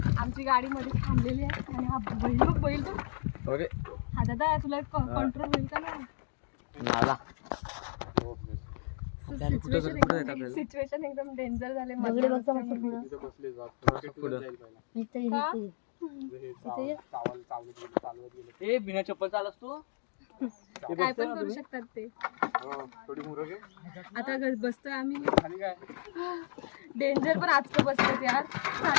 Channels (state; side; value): silent; right; digital silence